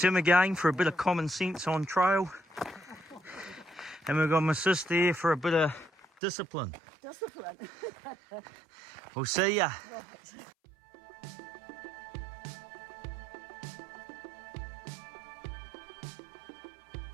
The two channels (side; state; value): left; drops out; at 6.2 s